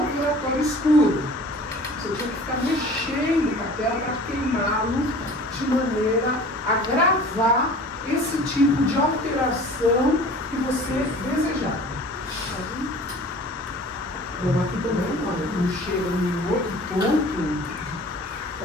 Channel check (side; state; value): both; normal; correlation 0.44